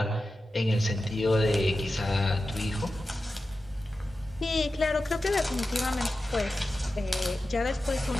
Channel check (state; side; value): normal; both; correlation 0.93